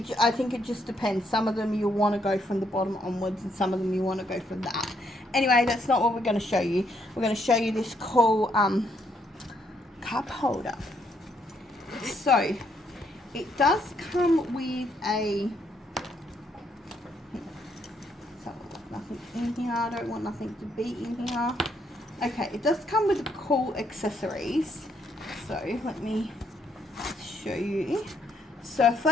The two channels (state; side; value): normal; both; correlation 0.73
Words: I think it just depends. Some of them you'll want to go from the bottom onwards, and some of them you want to go from that. Anyway, that's not what we're going to show you. We're going to show you this cool cup holder. So, it does come with a... So, nothing in here. I don't want nothing to be in here. Okay, it does come with cool accessories. So, let me show you. So,